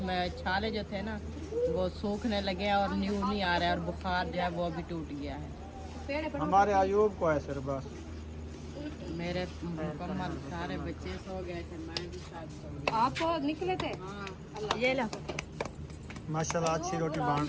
छाले जो थे ना वो सूखने लगे हैं और न्यू नहीं आ रहा है और बुखार जो है वो अभी टूट गया है। हमारे अयूब को है सिर्फ बस। मेरे मुकम्मल सारे बच्चे सो गए थे, मैं भी साथ सो गई। आप निकले थे? हाँ ये लो। माशाल्लाह अच्छी रोटी बन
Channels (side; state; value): both; identical; correlation 1.00